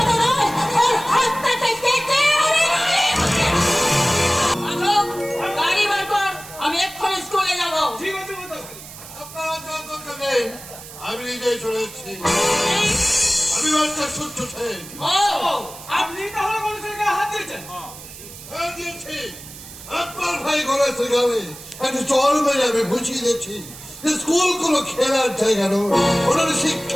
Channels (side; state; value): right; noise; hiss, 15 dB below the sound